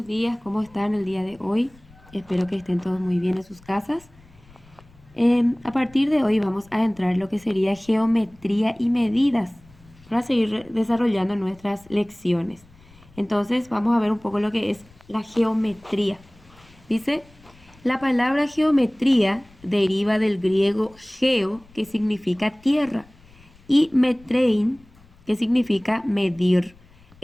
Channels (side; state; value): left; noise; rumble, 27 dB below the sound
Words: días, ¿cómo están el día de hoy? Espero que estén todos muy bien en sus casas. A partir de hoy vamos a entrar en lo que sería geometría y medidas para seguir desarrollando nuestras lecciones. Entonces vamos a ver un poco lo que es la geometría. Dice, la palabra geometría deriva del griego geo, que significa tierra, y metrein, que significa medir.